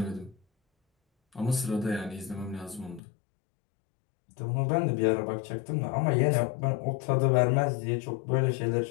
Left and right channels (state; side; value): drops out; right; at 3.0 s